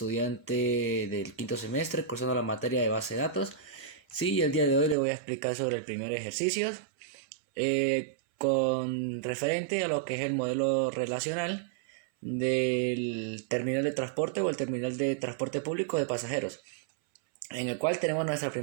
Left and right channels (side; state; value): left; drops out; at 5.0 s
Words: del quinto semestre, cursando la materia de base de datos. Sí, el día de hoy le voy a explicar sobre el primer ejercicio, con referente a lo que es el modelo relacional del terminal de transporte o el terminal de transporte público de pasajeros, en el cual tenemos nuestra